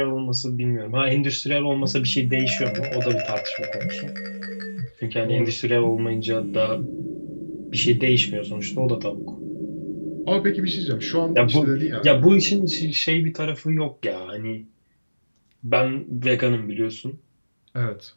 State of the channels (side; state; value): both; inverted; correlation -1.00